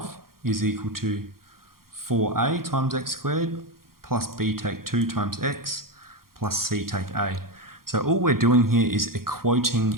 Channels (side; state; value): left; late; 0.92 ms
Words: is equal to 4a times x squared plus b take 2 times x plus c take a. So all we're doing here is